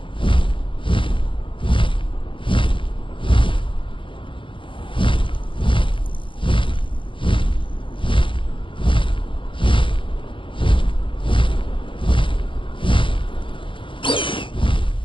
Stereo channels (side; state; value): right; late; 0.25 ms